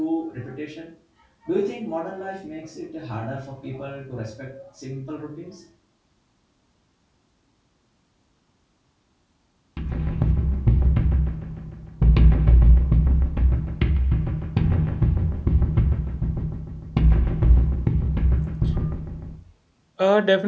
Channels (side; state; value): both; identical; correlation 1.00